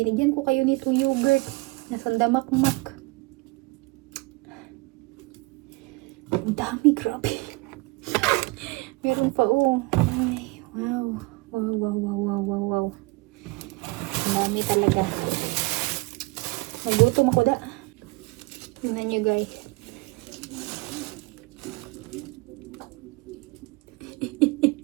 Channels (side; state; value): left; quieter; 24.5 dB